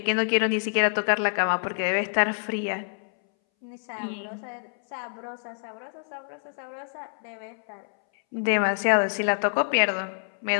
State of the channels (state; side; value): silent; right; 60 dB below the other